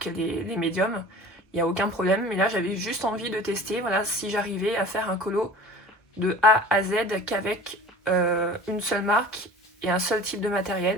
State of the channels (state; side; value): normal; both; correlation 0.42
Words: les médiums. Il n'y a aucun problème, mais là j'avais juste envie de tester si j'arrivais à faire un colo de A à Z qu'avec une seule marque et un seul type de